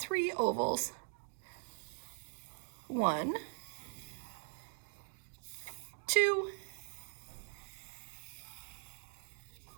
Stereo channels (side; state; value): left; silent; 50 dB below the other